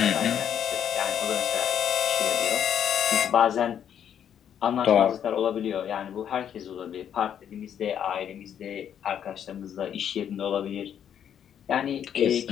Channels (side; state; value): right; quieter; 9.1 dB